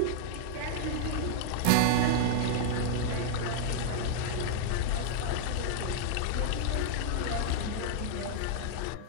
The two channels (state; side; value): different; both; correlation -0.01